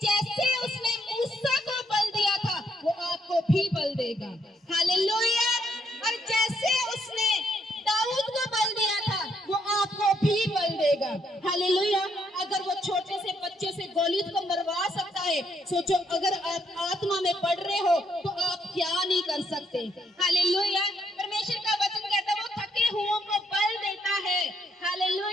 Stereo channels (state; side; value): normal; both; correlation 0.73